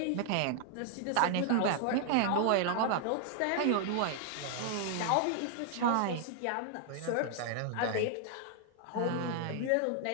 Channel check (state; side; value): different; both; correlation 0.00